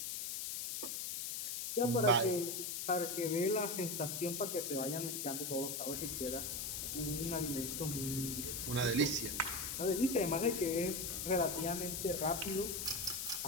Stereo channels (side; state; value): left; noise; hiss, 3 dB below the sound